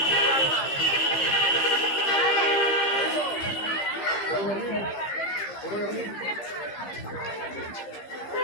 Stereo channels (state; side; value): late; right; 15 ms